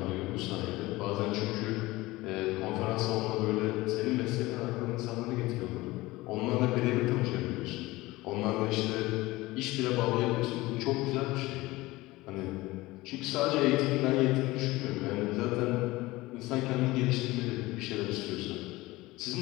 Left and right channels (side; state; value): right; quieter; 19.8 dB